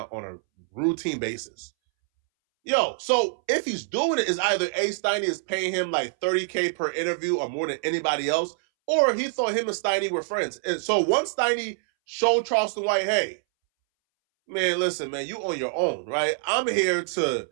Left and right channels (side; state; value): left; silent; 61 dB below the other